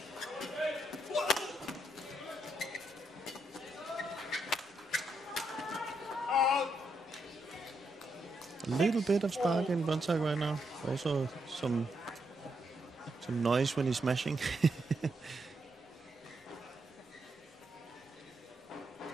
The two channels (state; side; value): normal; both; correlation 0.80